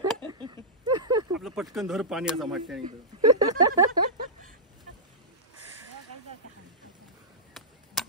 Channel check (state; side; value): normal; both; correlation -0.15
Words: आपलं पटकन धर पाणी असं वाटतं.